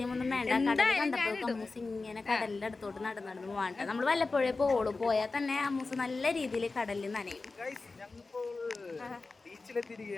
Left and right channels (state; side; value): quieter; right; 3.8 dB